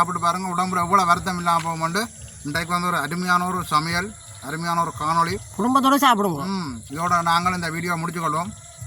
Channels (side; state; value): both; identical; correlation 1.00